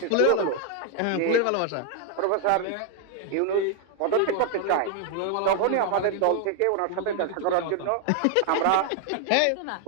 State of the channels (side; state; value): both; different; correlation 0.00